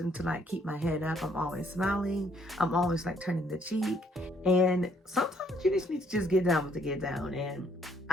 to like keep my head up. I'm always smiling. I'm always like turning the cheek. And sometimes you just need to just get down with the get down. And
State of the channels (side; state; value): both; normal; correlation 0.67